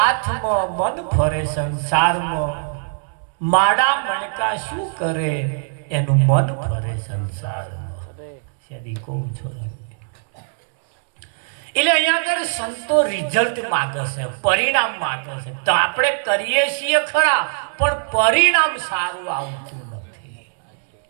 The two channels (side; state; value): left; silent; digital silence